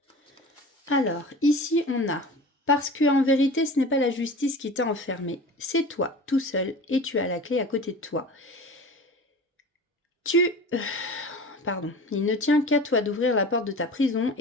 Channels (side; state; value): both; normal; correlation 0.37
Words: Alors, ici, on a, parce que en vérité, ce n'est pas la justice qui t'a enfermé, c'est toi, tout seul, et tu as la clé à côté de toi. Tu pardon. Il ne tient qu'à toi d'ouvrir la porte de ta prison